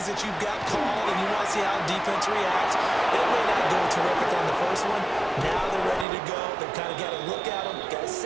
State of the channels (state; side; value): drops out; left; at 6.1 s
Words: that you've got called and you want to see how defense reacts. It may not go terrific on the first one. Now they're ready to go. They've kind of got a look at them, got a